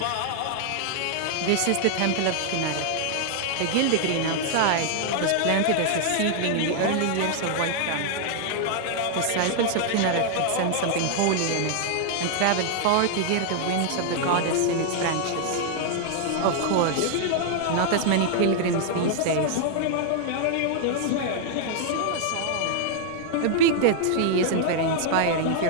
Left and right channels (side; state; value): both; different; correlation 0.00